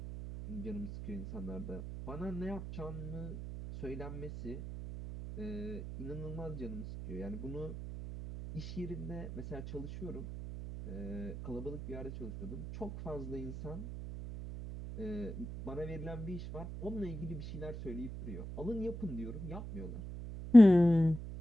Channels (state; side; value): noise; right; hum, 8 dB below the sound